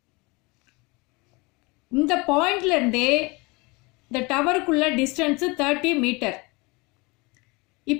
இந்த பாயிண்ட்லேருந்து இந்த டவருக்குள்ள டிஸ்டன்ஸு 30 மீட்டர்.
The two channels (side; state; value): right; quieter; 26.2 dB